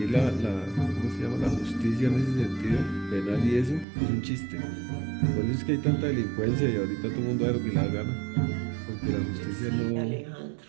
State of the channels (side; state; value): left; drops out; at 3.9 s